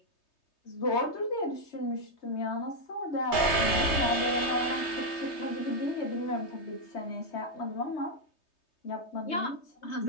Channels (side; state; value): right; late; 3.2 ms